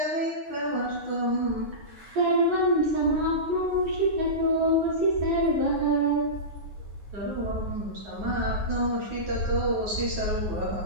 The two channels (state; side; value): late; left; 9.5 ms